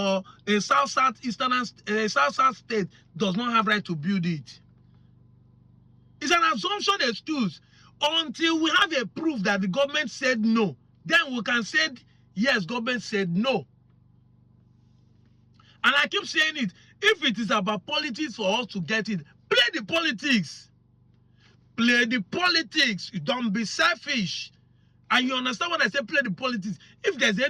a south state does not have right to build it. It's an assumption excuse until we have a proof that the government said no. Then we can say, yes, government said no. And I keep saying it. If it is about politics for us to get it, play the politics. Play the politics. You don't be selfish. And you understand what I say, play the politics. If there's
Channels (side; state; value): both; identical; correlation 1.00